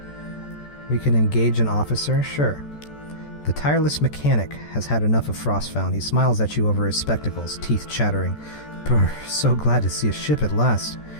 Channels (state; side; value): late; right; 14 ms